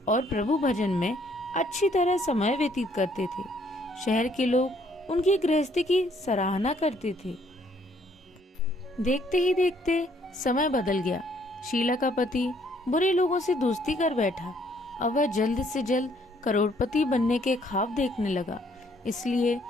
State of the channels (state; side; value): normal; both; correlation 0.65